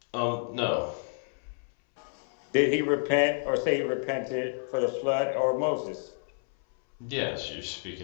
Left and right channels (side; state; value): right; silent; 58 dB below the other